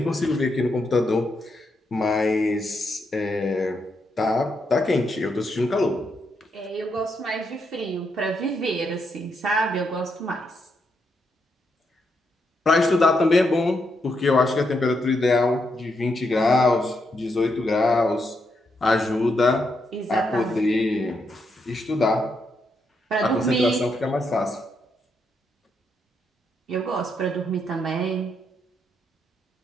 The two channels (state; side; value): normal; both; correlation 0.80